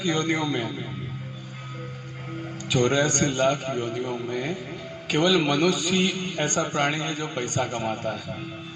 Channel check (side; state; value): both; identical; correlation 1.00